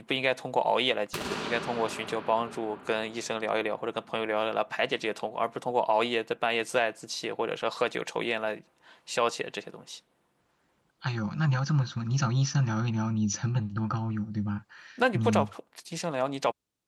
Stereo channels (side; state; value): both; identical; correlation 1.00